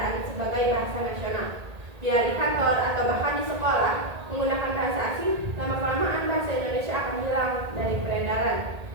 sebagai bahasa nasional. Bila di kantor atau bahkan di sekolah menggunakan bahasa asing, lama-kelamaan bahasa Indonesia akan hilang dari peredaran.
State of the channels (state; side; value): late; left; 1.8 ms